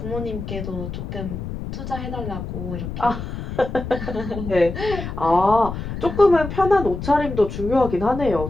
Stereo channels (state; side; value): noise; left; rumble, 7 dB below the sound